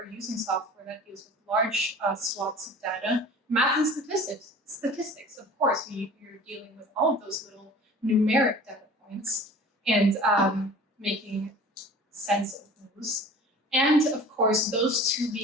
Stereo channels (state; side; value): normal; both; correlation 0.43